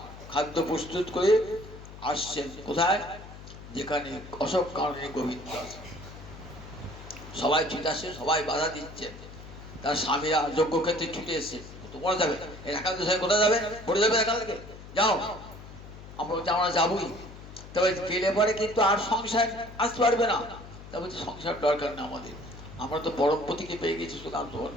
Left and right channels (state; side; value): noise; left; hum, 15 dB below the sound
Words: খাদ্য প্রস্তুত করে আসছেন। কোথায়? যেখানে অশোক কাননে গোবিন্দ আছে। সবাই ছুটে আসে, সবাই বাধা দিচ্ছে, তার স্বামীরা যজ্ঞক্ষেত্রে ছুটে এসছে। তোমরা যাবে এখান থেকে, কোথায় যাবে? পড়ে যাবে এখান থেকে, যাও। আমরা বলছি আমরা যাবোই, তবে গেলে পরে কিন্তু আর সংসার আসতে পারবে না। তা বলছি সংসার দরকার না আমাদের, আমরা তো পরমপতিকে পেয়ে গেছি, সুতরাং তোমার